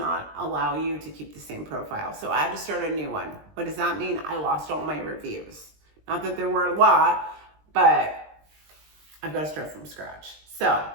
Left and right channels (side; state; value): left; late; 20 ms